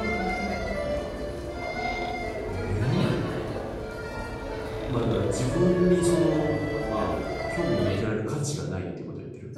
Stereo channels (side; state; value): both; identical; correlation 1.00